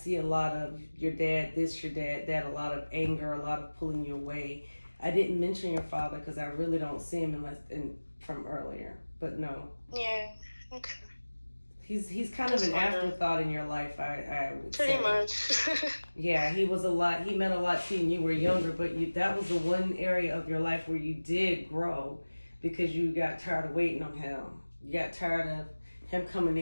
a lot of your dad, your dad, that, a lot of anger, a lot of pulling you away. I didn't mention your father because I really don't see him from earlier. But no. Yeah. Okay. He's kind of an afterthought in your life, I would Pretty say. much. Yeah, he was a lot. He meant a lot to you when you were younger, but that was the one area of your life where you did grow because you got tired of waiting on him. You got tired of him coming to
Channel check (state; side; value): inverted; both; correlation -1.00